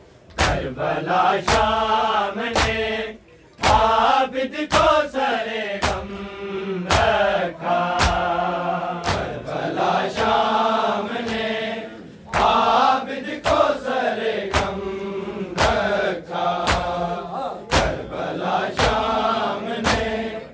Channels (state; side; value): identical; both; correlation 1.00